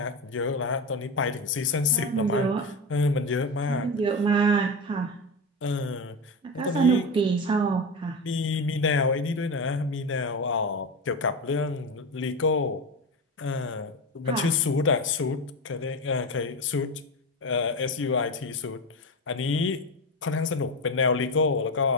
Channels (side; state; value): both; normal; correlation 0.19